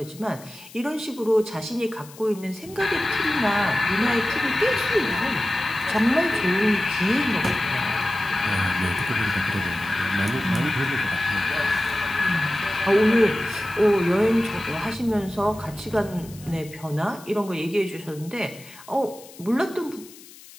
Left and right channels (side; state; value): left; noise; hiss, 20 dB below the sound